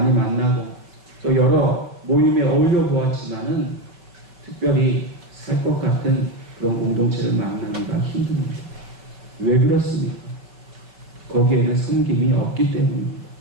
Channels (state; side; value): late; left; 5.2 ms